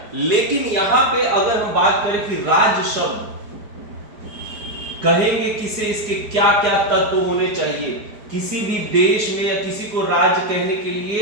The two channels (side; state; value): left; late; 4.8 ms